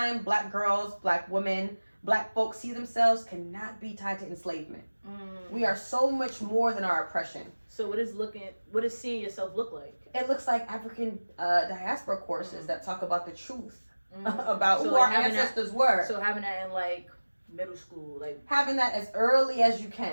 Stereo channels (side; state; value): both; inverted; correlation -1.00